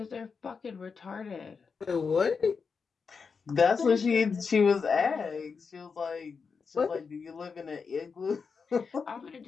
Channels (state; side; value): quieter; right; 5.4 dB